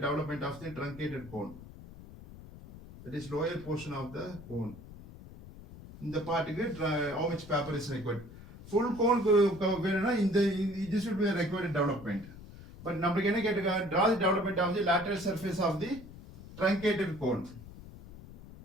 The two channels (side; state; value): left; noise; rumble, 16 dB below the sound